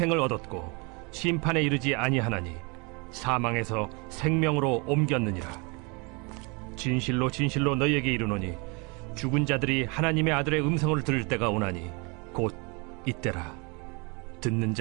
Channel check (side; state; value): left; quieter; 30.2 dB